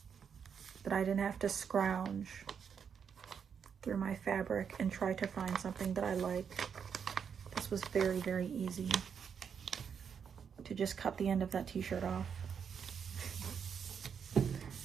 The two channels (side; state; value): left; quieter; 7.1 dB